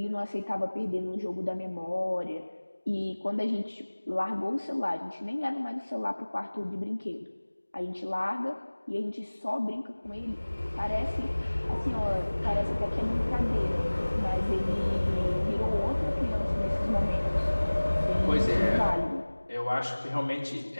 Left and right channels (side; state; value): both; inverted; correlation -1.00